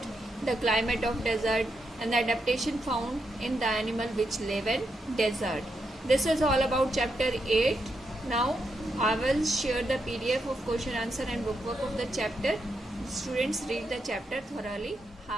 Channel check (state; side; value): normal; both; correlation 0.83